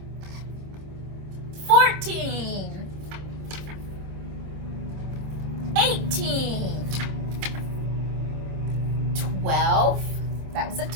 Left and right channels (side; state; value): left; late; 26 ms